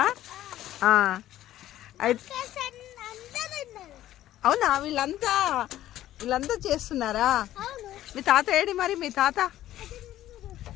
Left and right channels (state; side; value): quieter; right; 13.5 dB